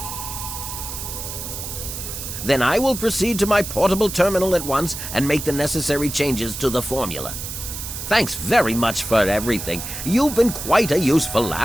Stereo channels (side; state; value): right; noise; hiss, 7 dB below the sound